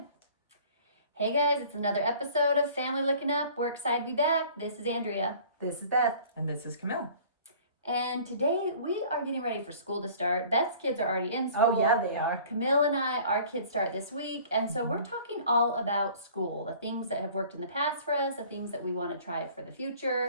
Hey, guys. It's another episode of Family Looking Up. We're excited to be back. This is Andrea. This is Beth. And this is Camille. And today we are getting ready for school to start. Beth's kids are already in school. Oh, yeah, they are. Camille and I, our kids start this week. And so we're talking all about school, the things that have worked in the past for us, the things that we want to try for the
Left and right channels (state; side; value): inverted; both; correlation -0.49